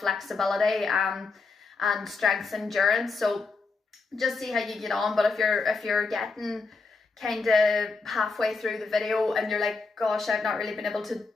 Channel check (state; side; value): quieter; right; 4.1 dB